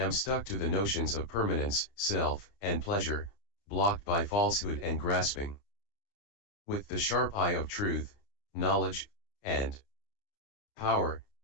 stuck to the notions of permanence, self, and pleasure, blocked by falsehood and grasping. With the sharp eye of truth, knowledge, and power,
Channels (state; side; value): late; right; 30 ms